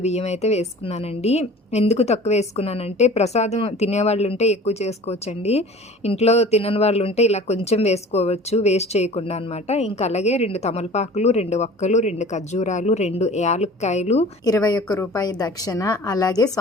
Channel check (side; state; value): both; normal; correlation 0.43